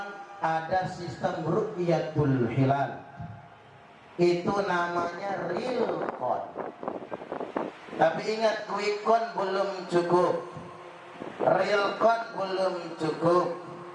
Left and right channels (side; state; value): both; identical; correlation 1.00